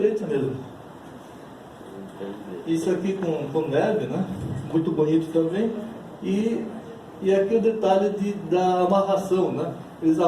mesmo. Isso aqui com neve, né? Muito bonito também. E aqui o detalhe da amarração, né? Eles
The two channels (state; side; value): identical; both; correlation 1.00